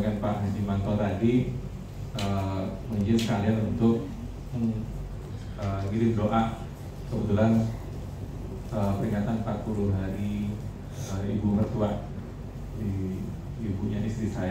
Pak Haji Manto tadi, mengizinkan sekalian untuk ngirim doa. Kebetulan peringatan 40 hari ibu mertua di ibunya istri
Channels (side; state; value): both; identical; correlation 1.00